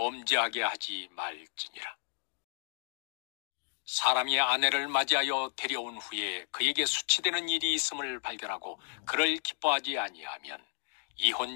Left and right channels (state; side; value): silent; right; digital silence